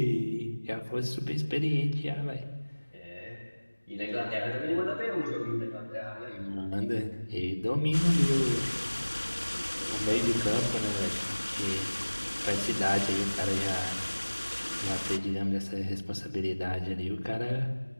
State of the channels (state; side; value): inverted; both; correlation -1.00